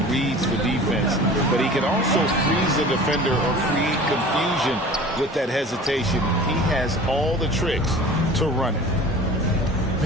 reads the defense, but he can also freeze the defender or create confusion with that hesitation. He has all the tricks to run it.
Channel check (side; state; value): both; normal; correlation 0.41